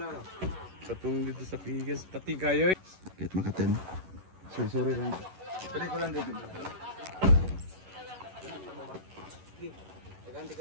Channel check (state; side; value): late; left; 11 ms